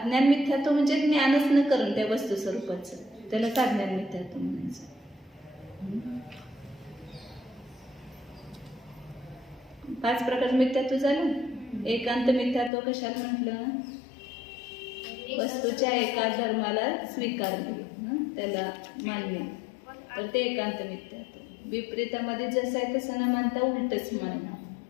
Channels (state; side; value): drops out; right; at 12.7 s